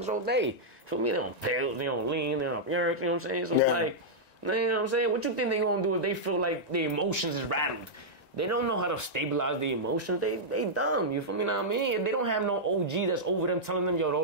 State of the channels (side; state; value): right; late; 1.9 ms